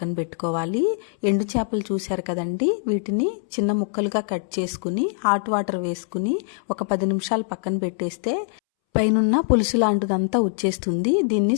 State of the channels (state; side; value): silent; right; 63 dB below the other